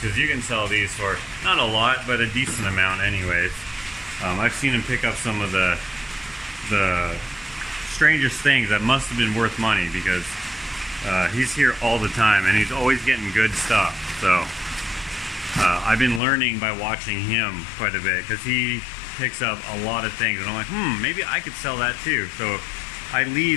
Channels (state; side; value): drops out; right; at 16.2 s